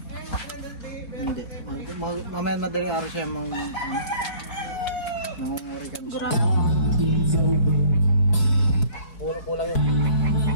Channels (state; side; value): late; right; 4.4 ms